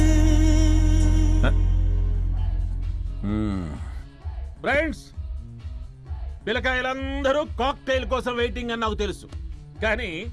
ఫ్రెండ్స్, పిల్లకాయలందరూ కాక్టైల్ కోసం వెయిటింగ్ అని నాకు తెలుసు, కానీ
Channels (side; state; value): both; identical; correlation 1.00